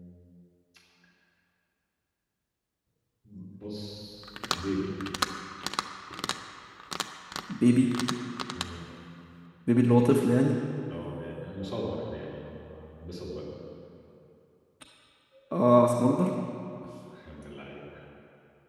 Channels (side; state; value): both; identical; correlation 1.00